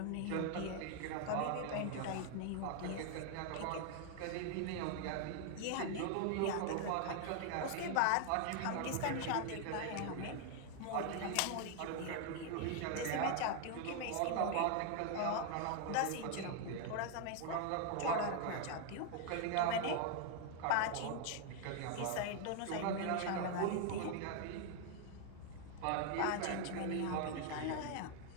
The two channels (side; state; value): both; different; correlation 0.00